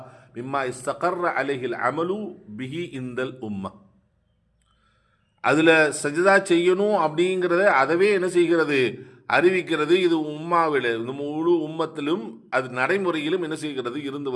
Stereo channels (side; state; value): both; identical; correlation 1.00